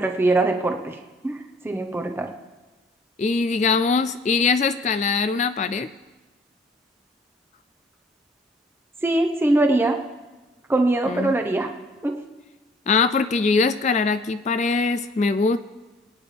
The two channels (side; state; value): both; normal; correlation 0.56